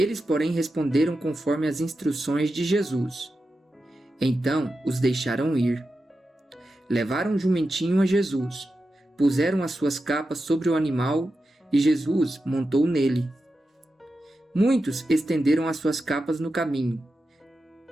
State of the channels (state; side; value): normal; both; correlation 0.90